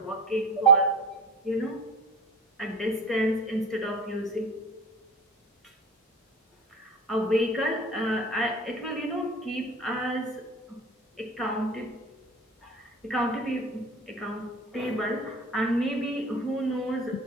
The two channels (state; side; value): normal; both; correlation 0.35